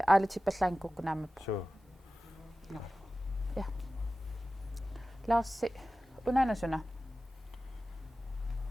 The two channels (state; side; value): normal; both; correlation 0.95